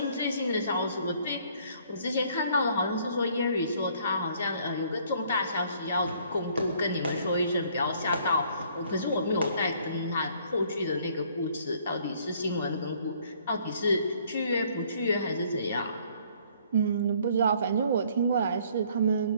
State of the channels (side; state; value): both; inverted; correlation -0.61